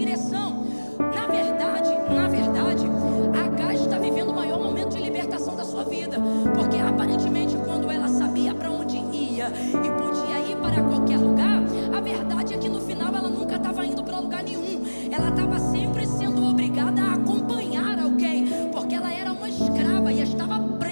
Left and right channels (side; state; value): both; inverted; correlation -1.00